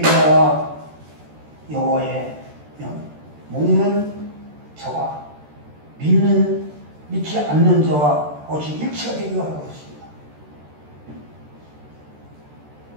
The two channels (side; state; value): left; late; 13 ms